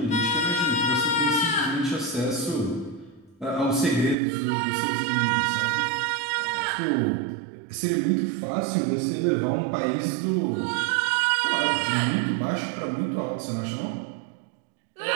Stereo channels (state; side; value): drops out; left; at 4.2 s